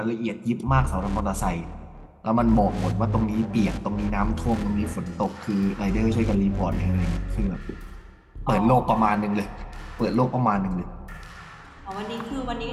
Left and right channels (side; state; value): both; identical; correlation 1.00